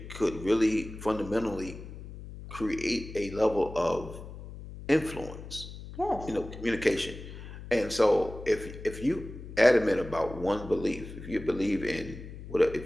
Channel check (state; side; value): noise; left; hum, 12 dB below the sound